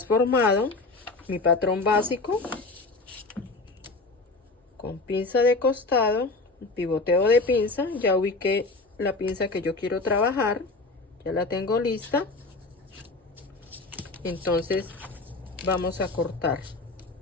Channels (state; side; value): quieter; right; 3.5 dB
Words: mi patrón básico con pinza de costado, pivoteo de pinza. Ya ubiqué la pinza que yo quiero trabajar, ya la tengo lista. Entonces vamos a cortar.